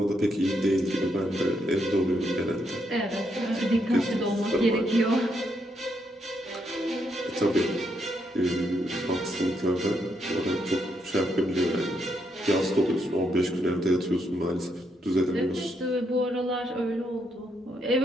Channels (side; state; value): both; normal; correlation 0.77